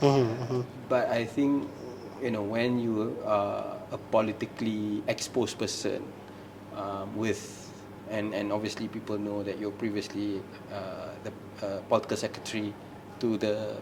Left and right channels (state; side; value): identical; both; correlation 1.00